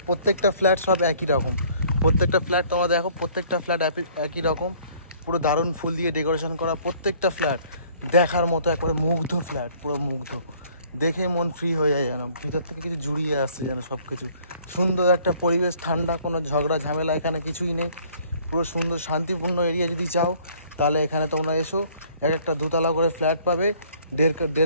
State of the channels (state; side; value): inverted; both; correlation -0.58